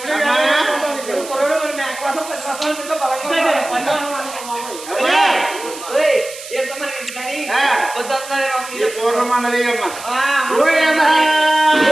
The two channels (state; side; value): noise; right; hiss, 13 dB below the sound